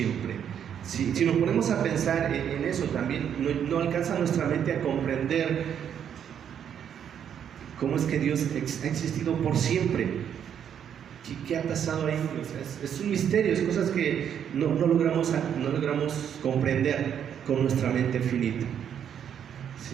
Si nos ponemos a pensar en eso también, no alcanza nuestra mente a comprender cómo es que Dios ha existido por siempre. ¿Qué ha pasado ahí? O sea, es un misterio, es cosas que no logramos comprender con nuestra mente finita.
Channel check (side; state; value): left; quieter; 8.8 dB